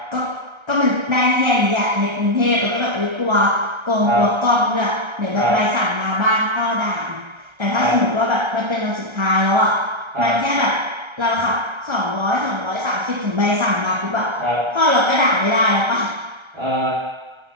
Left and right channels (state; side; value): late; left; 1.3 ms